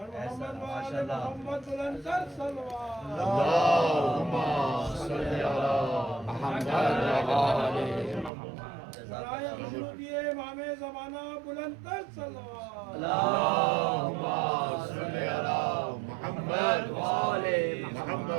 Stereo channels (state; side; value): drops out; left; at 8.3 s